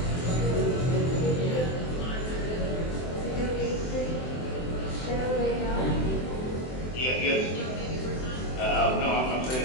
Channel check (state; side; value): late; right; 23 ms